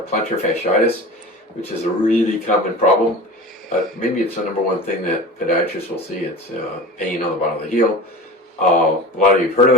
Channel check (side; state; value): both; normal; correlation 0.35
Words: plantar fasciitis, which is a really common problem. Maybe it's the number one thing that podiatrists will see. It's pain on the bottom of the heel. A lot of you have heard of